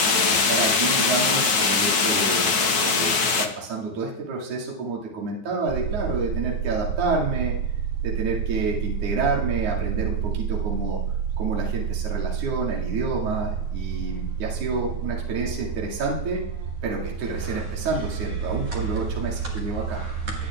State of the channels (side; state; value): left; late; 9.1 ms